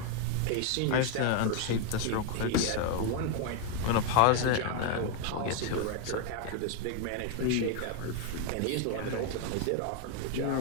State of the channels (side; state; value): both; different; correlation 0.00